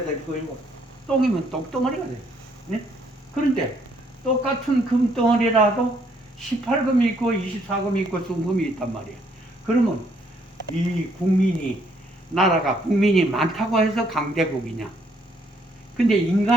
될 것이고 똥이면 똥덩어리가 될 것이고 그런데 똑같은 금덩어리라도 18금이 있고 24금이 있고 순금이 있단 말이야. 그러면 이 국민이 나라가 국민이 많다고 해서 강대국이냐. 근데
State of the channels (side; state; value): both; normal; correlation 0.69